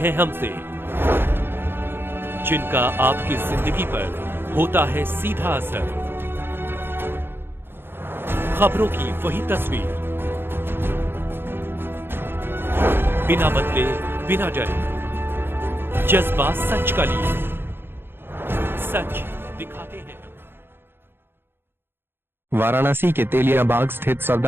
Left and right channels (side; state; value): left; late; 0.10 ms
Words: हमसे, जिनका आपकी जिंदगी पर होता है सीधा असर। खबरों की वही तस्वीर, बिना बदले बिना डरे, जज्बा सच का लिए, सच दिखाते हैं। वाराणसी के तेलियाबाग स्थित